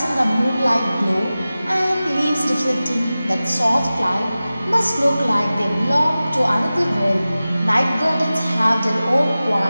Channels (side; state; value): both; inverted; correlation -0.96